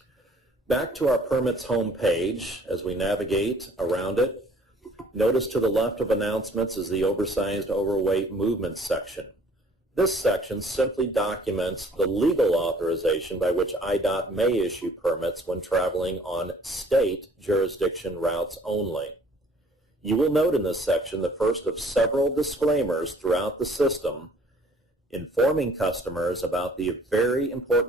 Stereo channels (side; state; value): both; normal; correlation 0.56